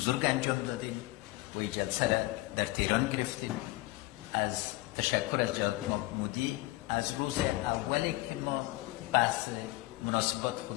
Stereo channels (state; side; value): quieter; right; 20.3 dB